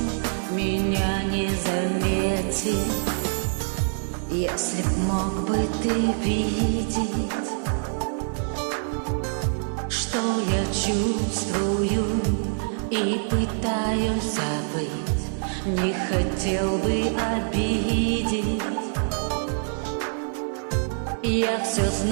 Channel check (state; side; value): silent; left; digital silence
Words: меня не заметил. Если б мог бы ты видеть, что я чувствую и пытаюсь забыть, не хотел бы обидеть. Я все